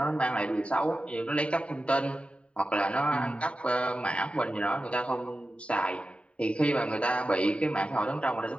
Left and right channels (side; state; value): right; late; 0.061 ms